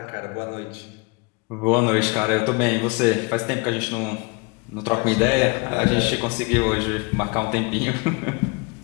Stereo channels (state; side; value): quieter; right; 29.2 dB